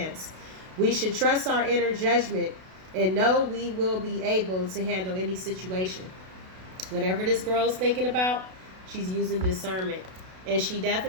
We should trust our inner judgment and know we will be able to handle any situation. Whatever this girl's thinking about, she's using discernment, and she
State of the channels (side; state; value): left; late; 32 ms